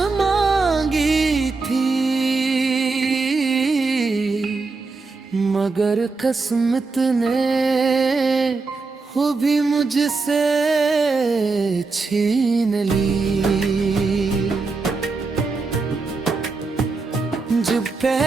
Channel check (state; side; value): quieter; left; 4.0 dB